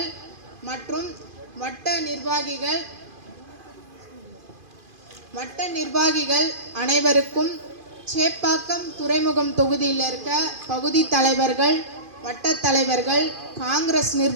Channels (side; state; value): left; late; 2.5 ms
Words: மற்றும் வட்ட நிர்வாகிகள் அனைவருக்கும், சேப்பாக்கம் துறைமுகம் தொகுதியில் இருக்க பகுதி தலைவர்கள், வட்ட தலைவர்கள், காங்கிரஸ்